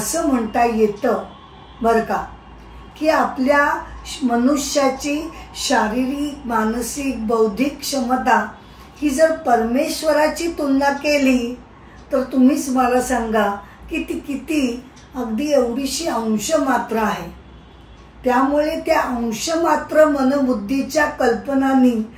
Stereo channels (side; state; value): both; identical; correlation 1.00